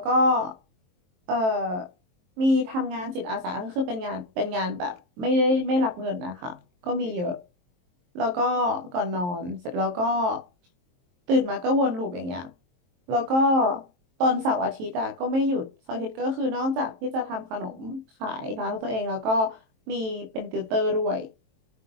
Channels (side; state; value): left; late; 23 ms